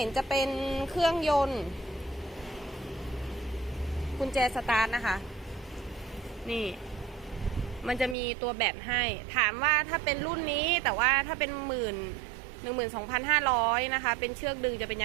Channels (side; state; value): left; drops out; at 8.2 s